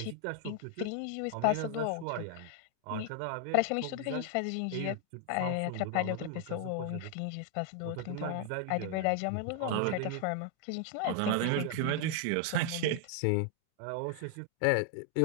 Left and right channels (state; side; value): different; both; correlation 0.00